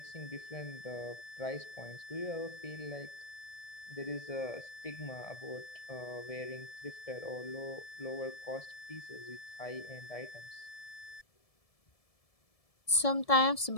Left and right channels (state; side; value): late; right; 1.7 ms